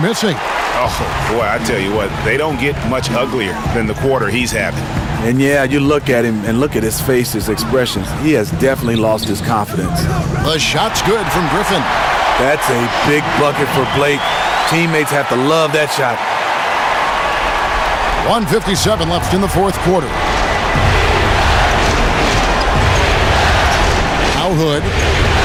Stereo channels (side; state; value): both; identical; correlation 1.00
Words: missing. Oh, boy, I tell you what, they don't get much uglier than the quarter he's having. And yeah, you look at him and look at his face, his expressions. He has definitely lost his confidence. The shot's good from Griffin. That's a big bucket for Blake. Teammates have to love that shot. 1:57 left in the fourth quarter. Now Hood.